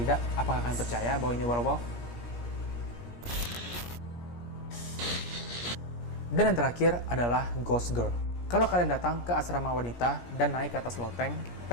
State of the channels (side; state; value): right; late; 17 ms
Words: apakah kalian percaya bahwa ini werewolf? Dan yang terakhir adalah Ghost Girl. Kalau kalian datang ke asrama wanita dan naik ke atas loteng,